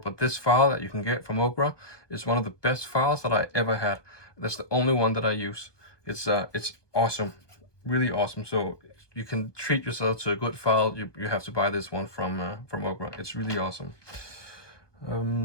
this file that you can get from Occre is one of the best files that I ever had. That's the only one that I use. It's awesome, really awesome. So you can treat yourself to a good file. You have to buy this one from Occre. It's really awesome.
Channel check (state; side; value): late; right; 1.2 ms